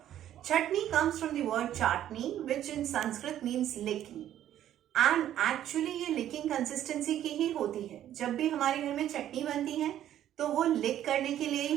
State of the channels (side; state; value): left; quieter; 11.6 dB